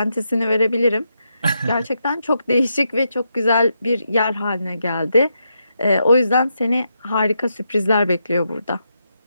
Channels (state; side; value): inverted; both; correlation -0.83